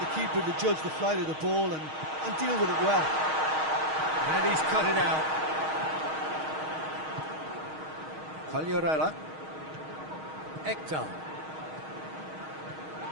keeper to judge the flight of the ball and deal with it well. And he's cut it out. Quagliarella. Ekdal.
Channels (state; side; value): late; left; 6.4 ms